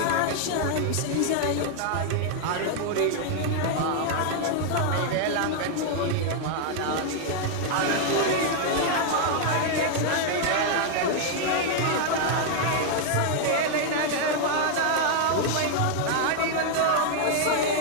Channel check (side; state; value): both; different; correlation 0.00